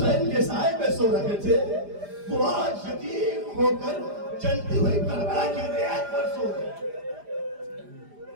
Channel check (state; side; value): late; left; 5.0 ms